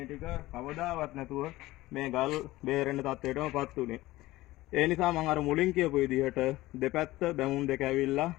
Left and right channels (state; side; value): quieter; right; 17.8 dB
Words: ටික කවදාවත් නැතුව මේ ගල් බේරෙන්න තත්ත්වයටමපත් උනේ. ඒ නිසා මම අර මුලින් කියපු විදිහට දෙපැත්ත බැමුම් දෙක ඇවිල්ලා